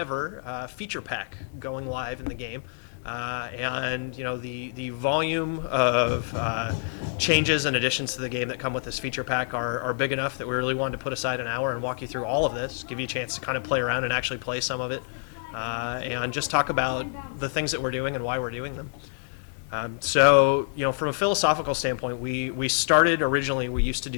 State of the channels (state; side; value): silent; right; digital silence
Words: feature pack going live in the game. And the volume of changes and additions to the game that come with this feature pack are big enough that we really wanted to put aside an hour and walk you through all of this, give you a chance to kind of play around and actually play some of it, and just talk about the things that we're doing and why we're doing them. So from a philosophical standpoint, we started originally, we used to